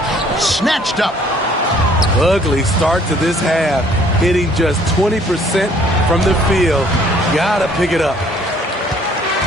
Snatched up. Ugly start to this half. Hitting just 20% from the field. Gotta pick it up.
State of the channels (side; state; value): both; normal; correlation 0.59